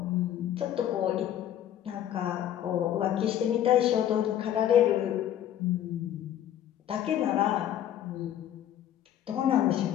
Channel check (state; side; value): quieter; right; 11.0 dB